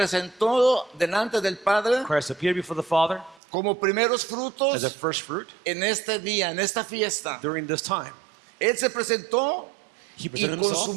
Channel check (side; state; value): left; drops out; at 3.4 s